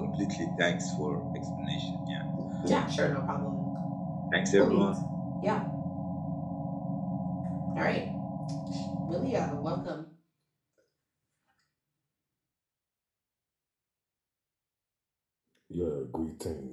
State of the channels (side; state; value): both; identical; correlation 1.00